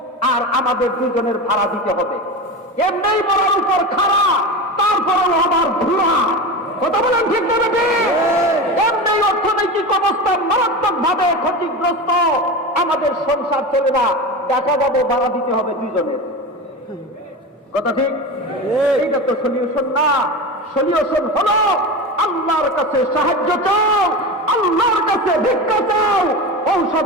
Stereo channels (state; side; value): normal; both; correlation 0.25